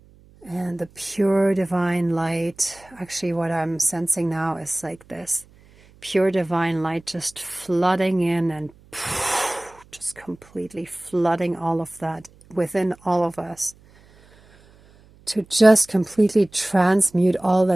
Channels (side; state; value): right; noise; hum, 27 dB below the sound